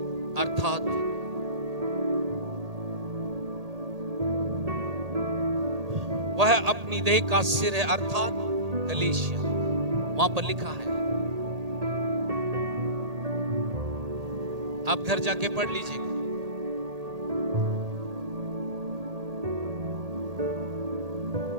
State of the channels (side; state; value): left; late; 1.8 ms